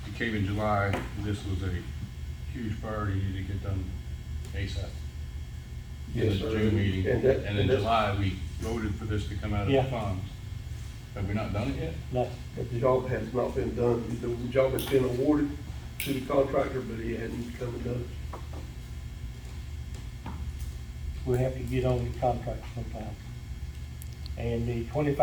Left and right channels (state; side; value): identical; both; correlation 1.00